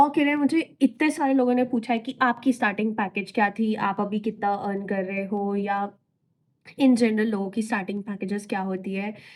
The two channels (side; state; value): both; identical; correlation 1.00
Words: के लिए मुझे इतने सारे लोगों ने पूछा है कि आपकी स्टार्टिंग पैकेज क्या थी, आप अभी कितना अर्न कर रहे हो, या इन जनरल लोगों की स्टार्टिंग पैकेजेस क्या होती है।